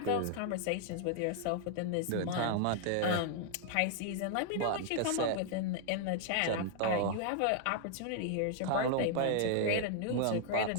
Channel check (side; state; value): both; different; correlation -0.01